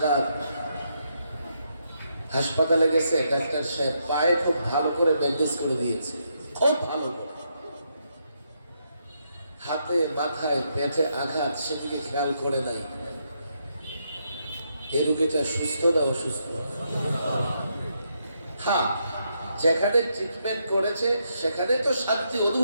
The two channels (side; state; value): both; inverted; correlation -0.79